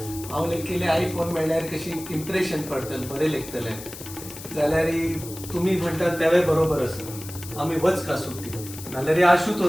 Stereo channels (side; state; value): left; noise; hiss, 13 dB below the sound